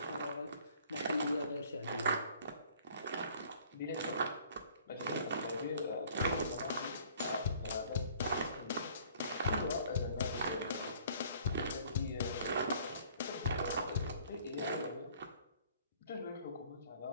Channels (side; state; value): both; inverted; correlation -0.55